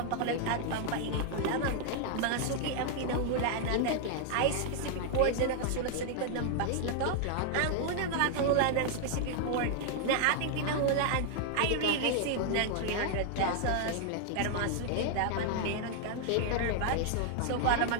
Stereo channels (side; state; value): both; different; correlation 0.00